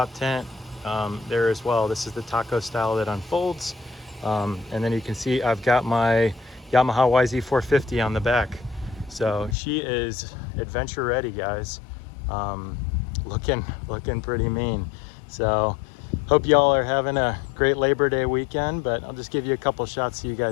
tent there as well. This is the taco style that unfolds. And then you can see I've got my Yamaha YZ450 on the back. So she is adventure ready, guys. Looking pretty mean. So hope y'all are having a great Labor Day weekend, but I'll just give you a couple shots so you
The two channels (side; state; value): right; drops out; at 9.6 s